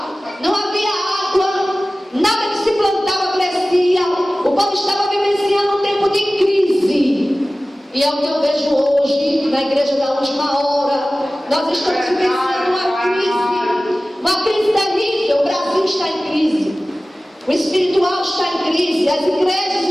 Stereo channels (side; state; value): both; normal; correlation 0.97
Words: não havia água, nada que se plantava crescia, o povo estava vivenciando um tempo de crise. E é o que eu vejo hoje na igreja da última hora. Nós estamos vivenciando uma crise terrível. O Brasil está em crise, o espiritual está em crise, as